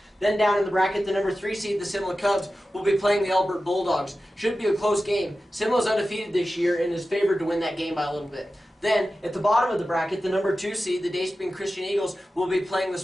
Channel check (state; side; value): normal; both; correlation 0.94